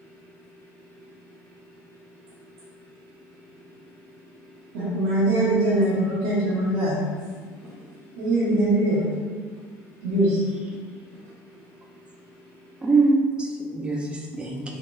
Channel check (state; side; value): normal; both; correlation 0.44